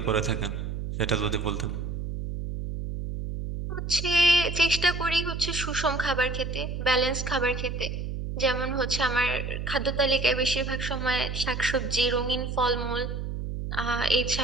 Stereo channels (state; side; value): noise; right; hum, 4 dB below the sound